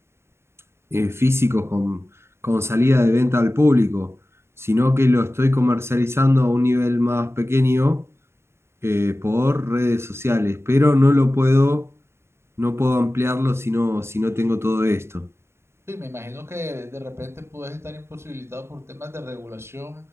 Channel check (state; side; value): late; left; 0.12 ms